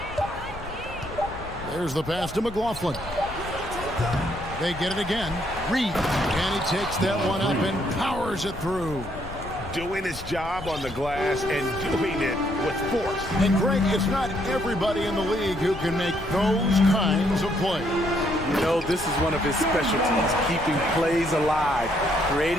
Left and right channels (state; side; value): noise; left; rumble, 13 dB below the sound